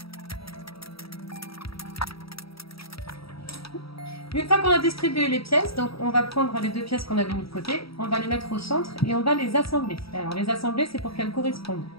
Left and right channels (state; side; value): late; right; 0.76 ms